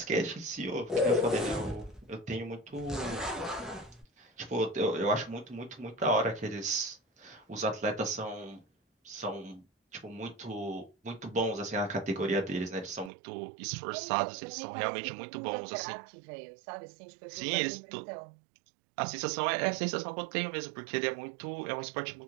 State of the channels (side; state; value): left; drops out; at 13.1 s